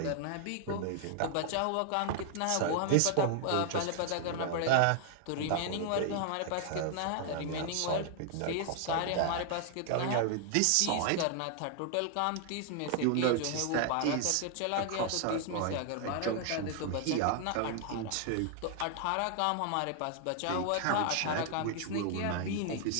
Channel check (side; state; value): both; different; correlation 0.00